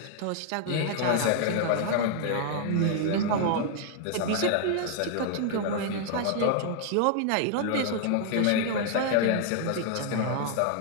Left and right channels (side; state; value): both; different; correlation 0.00